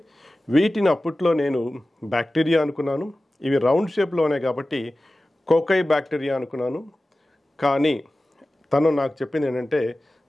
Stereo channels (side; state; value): both; normal; correlation 0.96